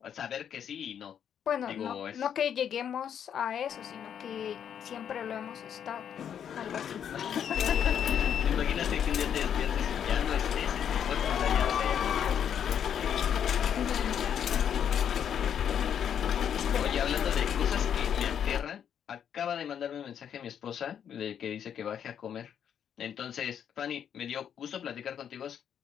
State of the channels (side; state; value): right; quieter; 8.7 dB